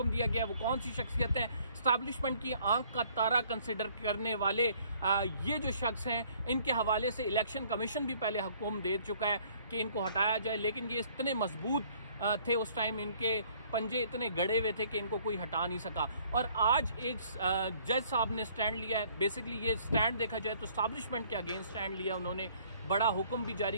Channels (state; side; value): inverted; both; correlation -0.60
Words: दिया गया। वो कौन सी शख्सियत है? इस्टेब्लिशमेंट की आंख का तारा कंसिडर करने वाले ये जो शख्स हैं, इनके हवाले से इलेक्शन कमीशन भी पहले हुक्म दे चुका है कि इनको हटाया जाए, लेकिन ये इतने मजबूत थे उस टाइम, इनके पंजे इतने गड़े हुए थे कि इनको कोई हटा नहीं सका। और आज एक जज साहब ने स्टैंड लिया है। बेसिकली ये स्टैंड देखा जाए तो इस्टेब्लिशमेंट के अगेंस्ट स्टैंड लिया उन्होंने। बड़ा हुक्म भी